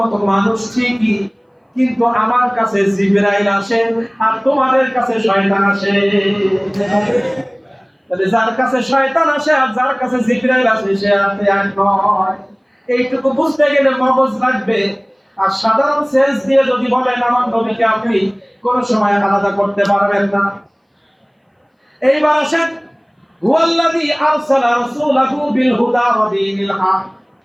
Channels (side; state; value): both; identical; correlation 1.00